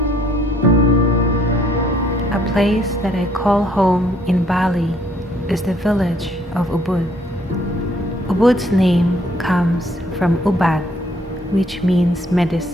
A place that I call home in Bali is the village of Ubud. Ubud's name comes from Ubud, which means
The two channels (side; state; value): both; normal; correlation 0.64